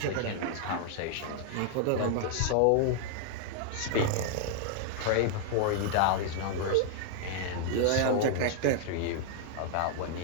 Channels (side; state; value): both; different; correlation 0.00